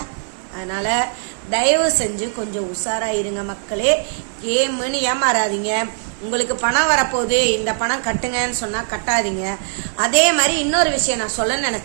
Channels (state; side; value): silent; left; digital silence